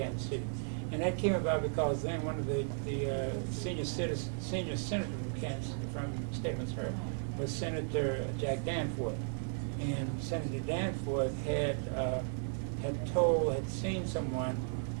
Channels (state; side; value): silent; left; digital silence